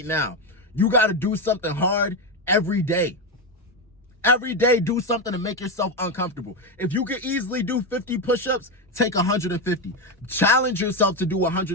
now. You got to do something hard every day. Every day, do something to make yourself uncomfortable. If you can easily do 50 push-ups, take 150. Challenge yourself to do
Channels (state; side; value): normal; both; correlation 0.11